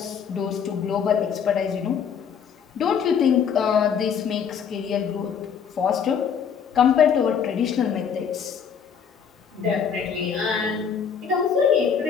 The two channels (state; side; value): quieter; right; 7.2 dB